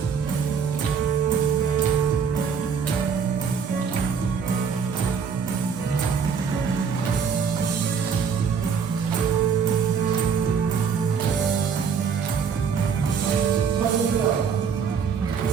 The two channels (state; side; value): quieter; left; 6.4 dB